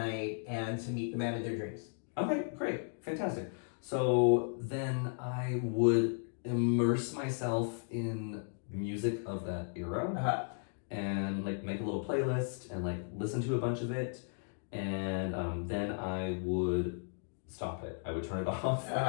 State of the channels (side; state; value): right; silent; digital silence